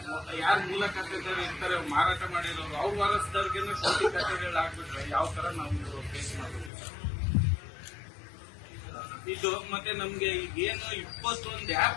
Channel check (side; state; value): right; drops out; at 6.7 s